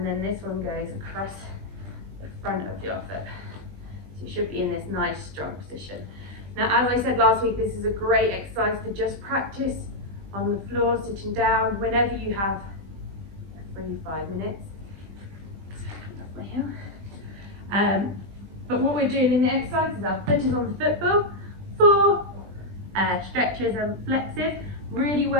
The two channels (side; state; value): left; late; 20 ms